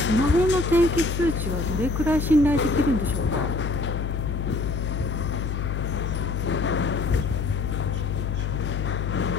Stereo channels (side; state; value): left; noise; hum, 2 dB below the sound